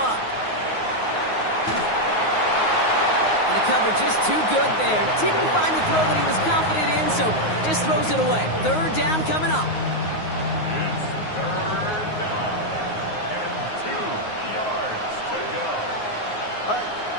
And the cover just too good there. Didn't find the throw that he was confident in, so just throws it away. Third down coming up. It's third down. And 2 yards to go.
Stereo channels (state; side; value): late; right; 9.5 ms